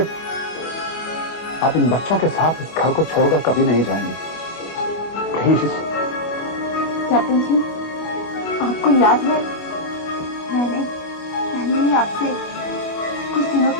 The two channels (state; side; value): late; right; 25 ms